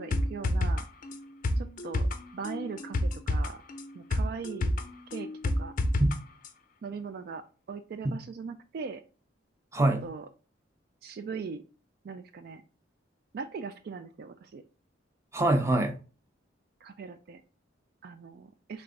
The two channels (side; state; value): both; normal; correlation 0.78